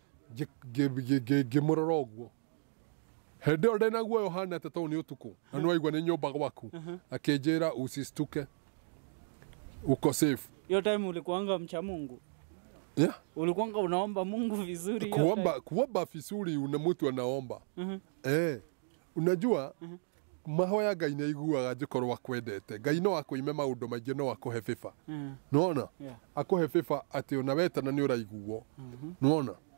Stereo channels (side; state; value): left; silent; digital silence